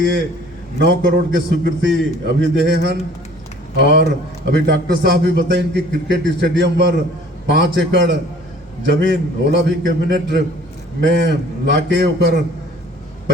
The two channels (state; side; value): normal; both; correlation 0.52